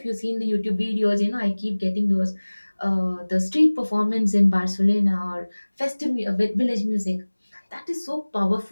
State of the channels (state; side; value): inverted; both; correlation -1.00